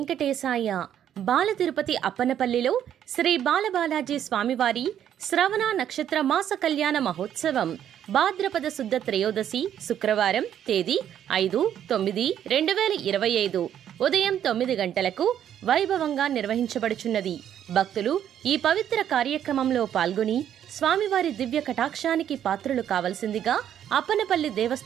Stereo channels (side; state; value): left; quieter; 10.1 dB